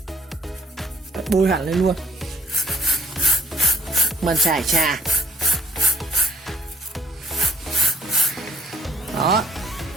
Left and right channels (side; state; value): both; normal; correlation 0.60